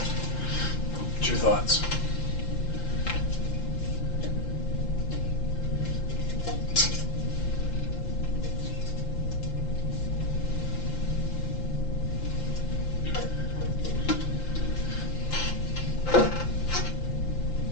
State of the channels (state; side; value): late; right; 5.8 ms